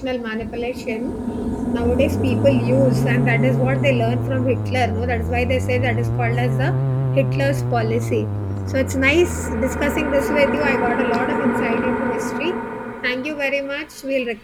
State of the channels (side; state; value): both; identical; correlation 1.00